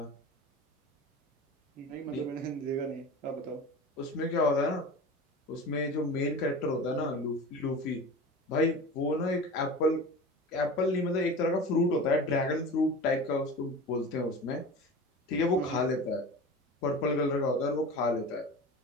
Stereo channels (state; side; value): normal; both; correlation 0.34